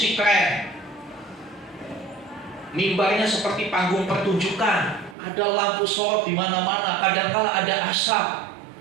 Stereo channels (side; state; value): left; drops out; at 5.2 s